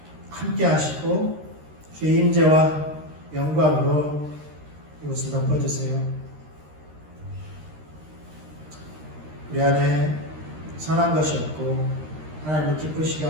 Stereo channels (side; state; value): left; late; 13 ms